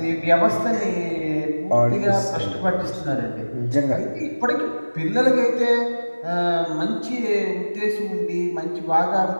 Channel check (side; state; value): both; inverted; correlation -1.00